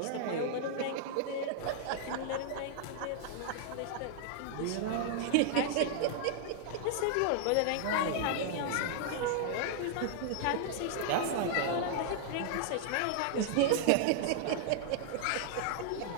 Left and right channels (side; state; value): both; different; correlation 0.00